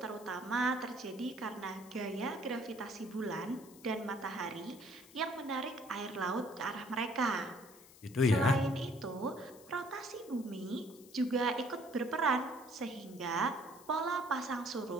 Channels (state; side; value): noise; left; hiss, 21 dB below the sound